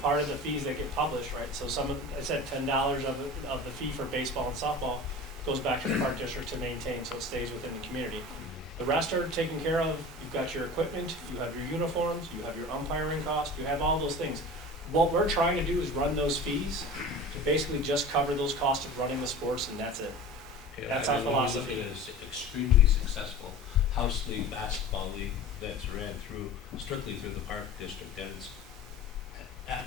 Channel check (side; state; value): both; normal; correlation 0.37